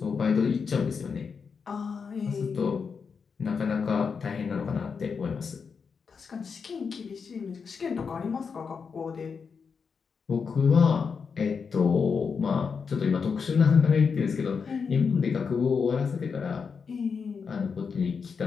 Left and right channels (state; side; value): quieter; right; 5.7 dB